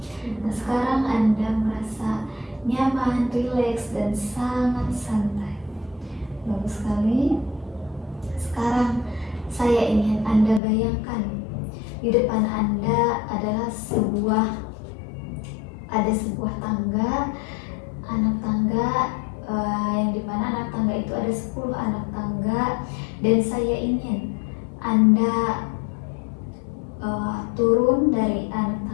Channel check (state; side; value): drops out; right; at 10.6 s